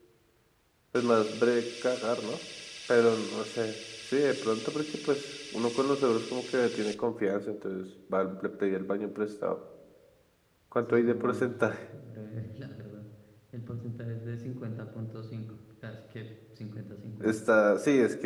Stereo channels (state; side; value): identical; both; correlation 1.00